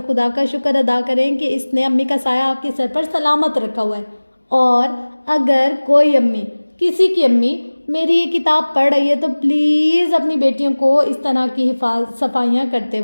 खुदा का शुक्र अदा करें कि इसने अम्मी का साया आपके सर पर सलामत रखा हुआ है। और अगर कोई अम्मी, किसी की अम्मी मेरी ये किताब पढ़ रही है तो प्लीज़ अपनी बेटियों को इस तरह की सफाइयाँ करते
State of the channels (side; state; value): both; inverted; correlation -1.00